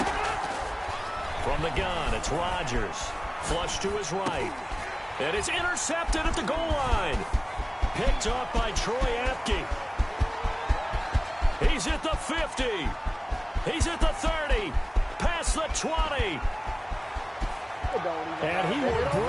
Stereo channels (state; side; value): identical; both; correlation 1.00